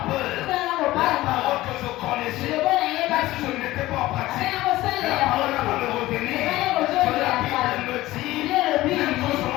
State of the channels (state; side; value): quieter; right; 17.1 dB